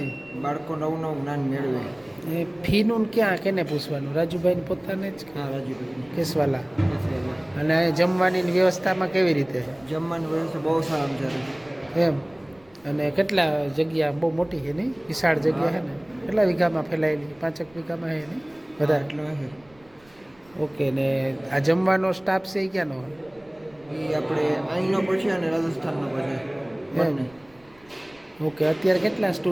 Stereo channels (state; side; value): noise; right; rumble, 29 dB below the sound